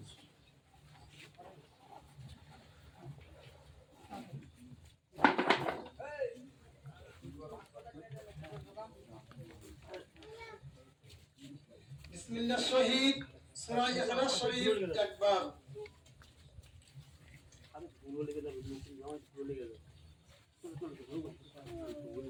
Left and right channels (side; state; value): both; identical; correlation 1.00